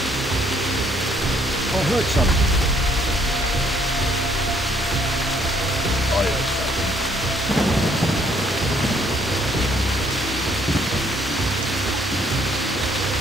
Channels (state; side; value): normal; both; correlation 0.65